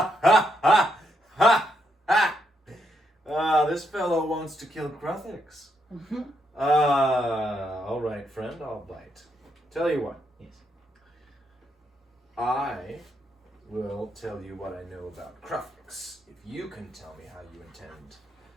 want. this fellow wants to kill Kruthiks. All right, friend, I'll bite. Tell you what. Yes. I will tell you what I know about Kruthiks, if you can tell me how you intend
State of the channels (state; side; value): normal; both; correlation 0.78